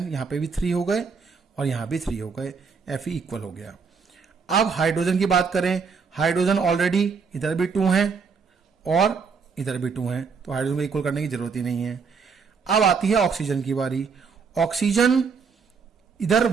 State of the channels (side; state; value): left; quieter; 5.5 dB